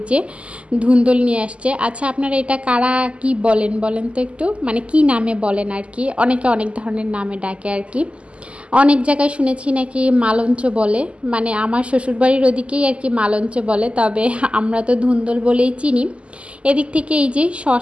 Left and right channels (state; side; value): late; left; 0.057 ms